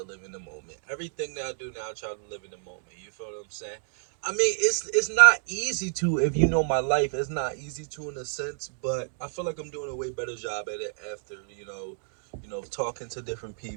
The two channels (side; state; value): left; silent; digital silence